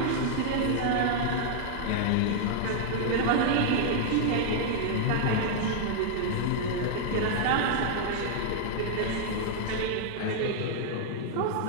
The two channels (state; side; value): different; both; correlation -0.01